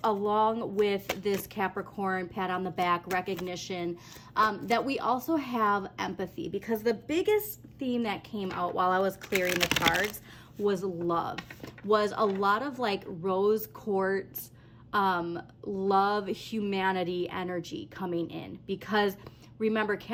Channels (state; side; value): identical; both; correlation 1.00